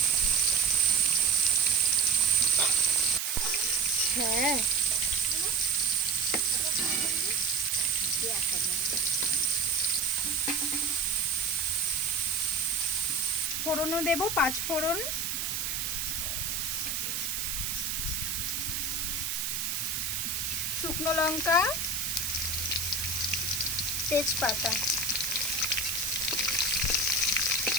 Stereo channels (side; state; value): right; noise; hiss, 1 dB below the sound